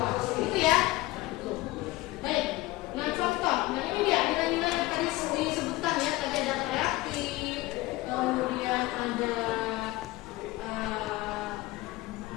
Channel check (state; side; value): quieter; right; 18.9 dB